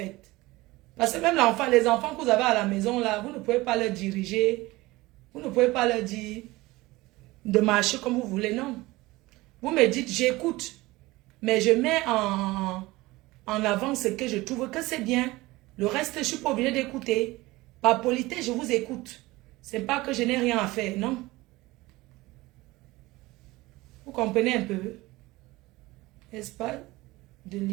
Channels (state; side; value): quieter; left; 20.2 dB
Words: Parce que même les enfants que vous avez à la maison, là, vous ne pouvez pas leur diriger. Vous ne pouvez pas leur dire de marcher comme vous voulez, non. Vous me dites, j'écoute. Mais je mets en avant ce que je trouve que c'est bien. Le reste, je ne suis pas obligée d'écouter. Par politesse, je vous écoute. Ce n'est pas que je n'ai rien à faire, non. Vous comprenez un peu? N'est-ce pas? De